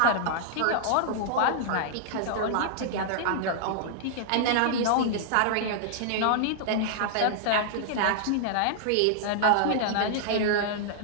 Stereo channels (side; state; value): both; different; correlation -0.01